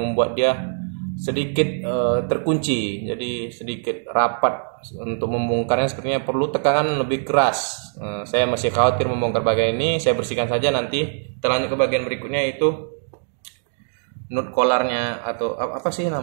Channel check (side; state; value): left; silent; digital silence